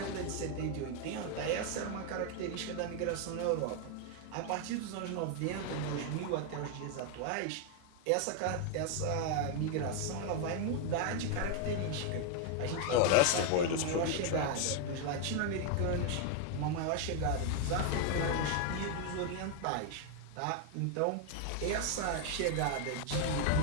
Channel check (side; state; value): both; different; correlation 0.01